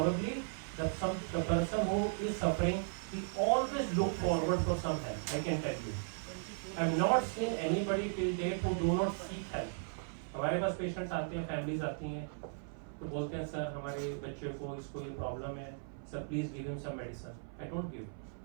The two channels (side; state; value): left; silent; 53 dB below the other